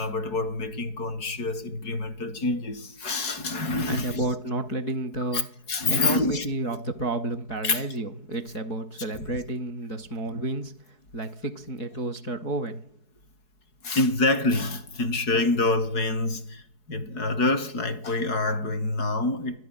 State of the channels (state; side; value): late; right; 4.7 ms